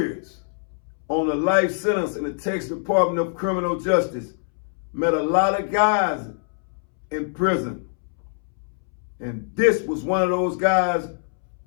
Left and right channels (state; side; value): silent; right; 63 dB below the other